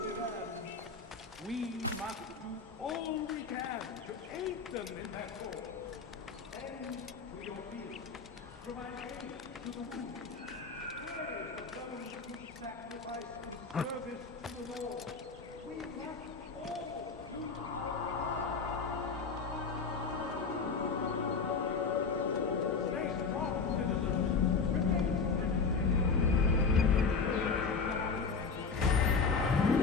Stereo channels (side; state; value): right; quieter; 4.9 dB